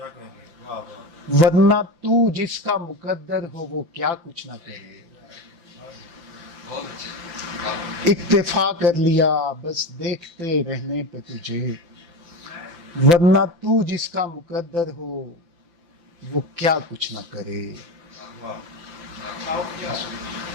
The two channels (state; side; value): late; left; 5.9 ms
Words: ورنہ تو جس کا مقدر ہو وہ کیا کچھ نہ کرے. اکتفا کر لیا بس دیکھتے رہنے پہ تجھے. ورنہ تو جس کا مقدر ہو وہ کیا کچھ نہ کرے.